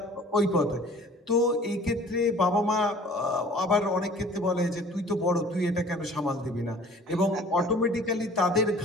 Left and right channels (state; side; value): normal; both; correlation 0.49